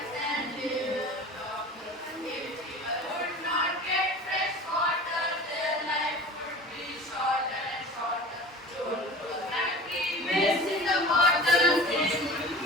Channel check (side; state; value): both; normal; correlation 0.38